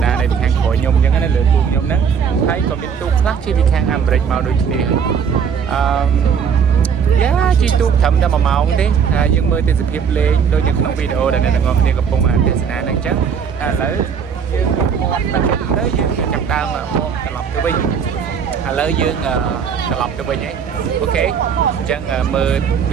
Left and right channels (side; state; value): left; quieter; 7.0 dB